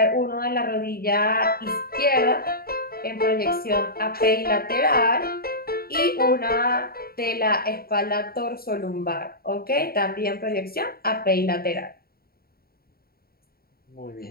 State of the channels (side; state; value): right; late; 0.44 ms